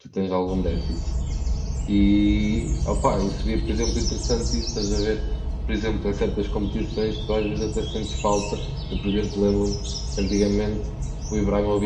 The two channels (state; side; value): identical; both; correlation 1.00